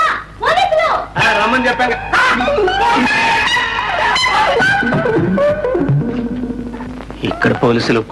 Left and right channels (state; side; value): identical; both; correlation 1.00